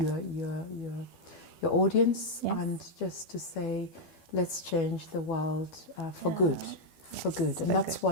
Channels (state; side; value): late; right; 12 ms